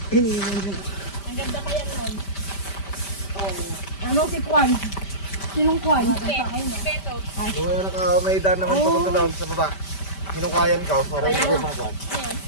Ano si Kwan? Sinong Kwan? Kung may daan naman papunta doon sa baba. Hinukayan ka, para hindi ko makuha.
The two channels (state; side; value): late; right; 5.1 ms